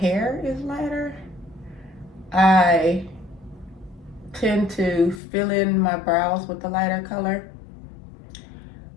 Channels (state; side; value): drops out; right; at 5.2 s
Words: is lighter, I tend to fill in my brows with the lighter color.